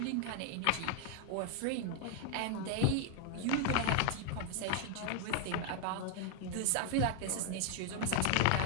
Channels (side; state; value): both; different; correlation 0.00